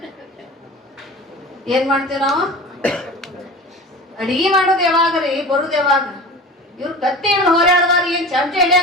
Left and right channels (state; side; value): normal; both; correlation 0.36